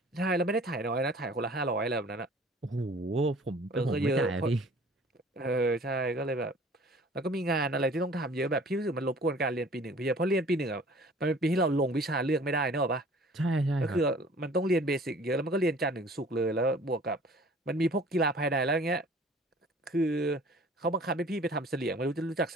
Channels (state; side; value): normal; both; correlation 0.50